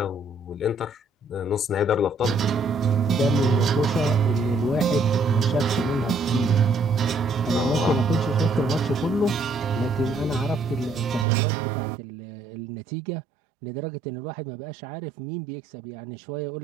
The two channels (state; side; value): drops out; left; at 11.2 s